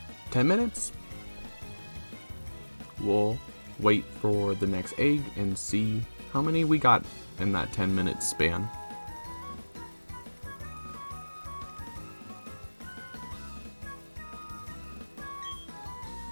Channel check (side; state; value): both; inverted; correlation -1.00